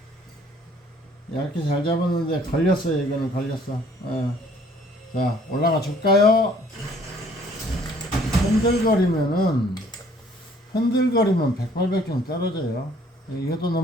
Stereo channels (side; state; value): both; normal; correlation 0.58